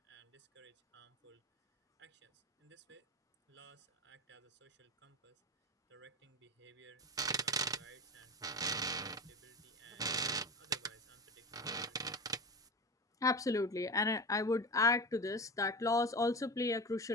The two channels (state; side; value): normal; both; correlation 0.26